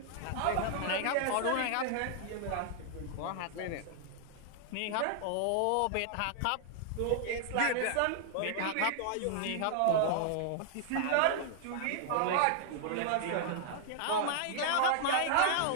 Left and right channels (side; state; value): both; different; correlation -0.01